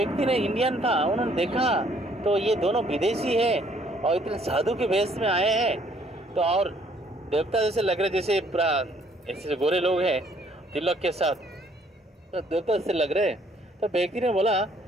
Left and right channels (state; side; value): normal; both; correlation 0.63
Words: ने, इंडियन था, उन्होंने देखा तो ये दोनों विदेशी है और इतने साधु के वेश में आए हैं, तो और देवता जैसे लग रहे, जैसे पूरा ऐसे गोरे लोग हैं तिलक के साथ, तो देवता जैसे लग रहे। तो व्यक्ति ने बोला,